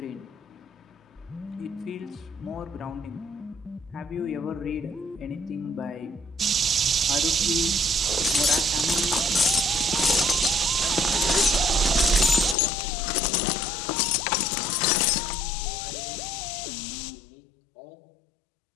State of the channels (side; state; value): right; drops out; at 12.6 s